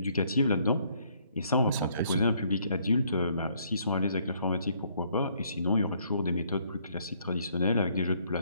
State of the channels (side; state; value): both; inverted; correlation -0.67